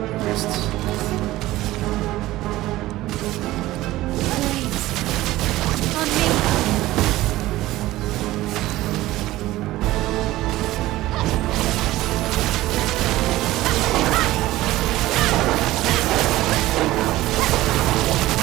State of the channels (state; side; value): quieter; left; 16.8 dB